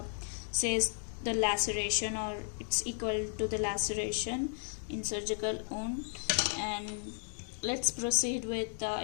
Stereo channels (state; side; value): silent; right; digital silence